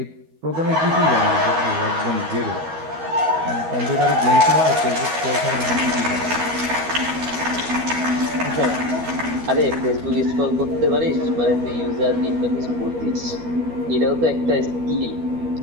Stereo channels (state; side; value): late; left; 12 ms